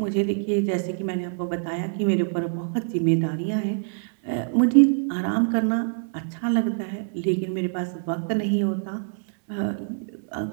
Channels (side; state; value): left; silent; digital silence